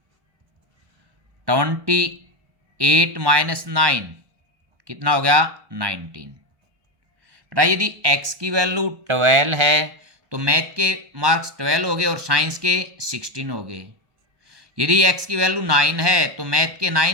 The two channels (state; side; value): late; left; 1.1 ms